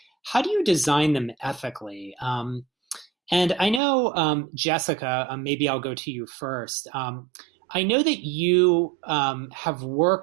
do you design them ethically? And I know, Jessica, maybe I'll go to you first. I know that you have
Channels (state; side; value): drops out; left; at 3.8 s